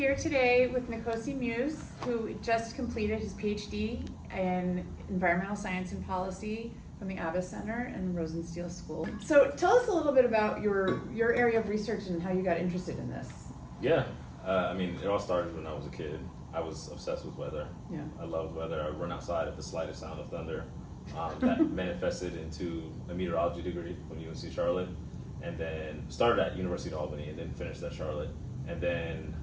today with Nkosi Muse, who just completed his PhD in Environmental Science and Policy from the Abbas Center and the Rosenstiel School. So tell us a little bit about your area of research and how you got interested in this. Yeah, it all started when I was a kid. I was obsessed with weather. Yeah. I loved weather. I would run outside at the slightest sound of thunder. That manifested into a meteorology degree from UNC Charlotte, and then started at University of Albany and then finished at Charlotte. And then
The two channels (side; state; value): both; identical; correlation 1.00